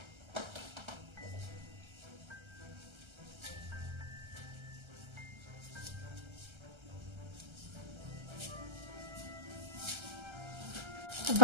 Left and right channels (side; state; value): left; late; 1.3 ms